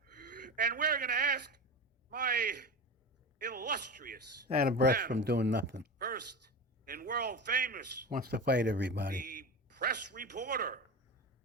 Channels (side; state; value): both; normal; correlation 0.26